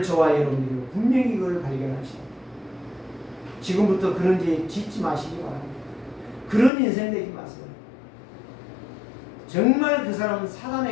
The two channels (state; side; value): drops out; right; at 6.7 s